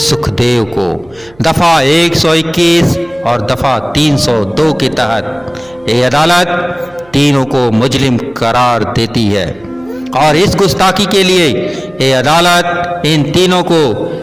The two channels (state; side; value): noise; right; hum, 28 dB below the sound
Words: को दफा 121 और दफा 302 के तहत ये अदालत तीनों को मुजरिम करार देती है और इस गुस्ताखी के लिए ये अदालत इन तीनों को